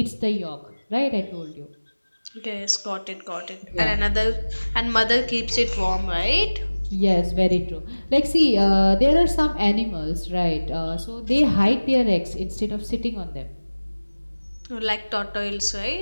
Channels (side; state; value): both; inverted; correlation -1.00